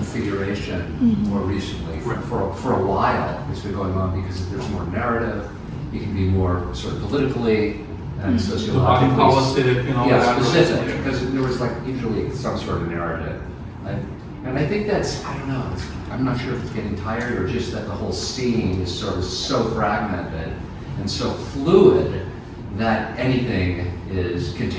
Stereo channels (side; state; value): both; identical; correlation 1.00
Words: figuration more recently. For a while, it's been going on because there's more narrative, you can be more sort of politically and sociologically. Body politic and all that. Specific, because there was like usually some sort of narrative. And I think that's, I don't know, I'm not sure if it's getting tired or just that the whole scene is sort of so fragmented and so fluid that anything can